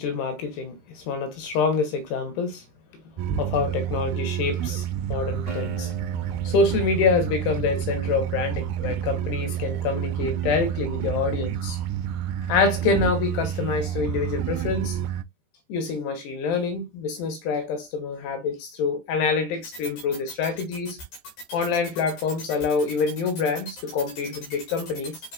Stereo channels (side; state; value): right; late; 13 ms